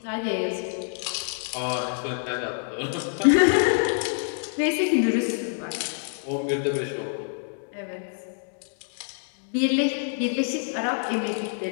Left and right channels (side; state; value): right; silent; digital silence